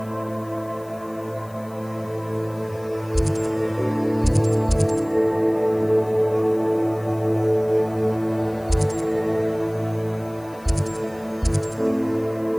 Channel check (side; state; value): left; noise; hiss, 26 dB below the sound